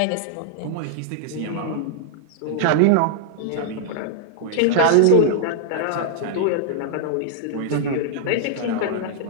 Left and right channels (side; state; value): both; different; correlation -0.01